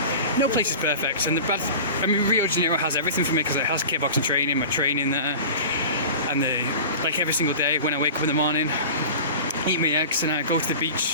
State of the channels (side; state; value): both; inverted; correlation -0.35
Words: No place is perfect, and Rio de Janeiro has everything for me, because it has kickboxing training, my training there, and like every single day when I wake up in the morning, eat my eggs, and I go to the